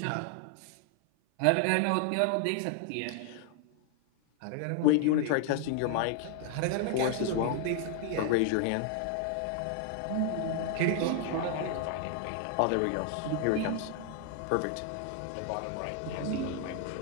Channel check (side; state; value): both; different; correlation 0.00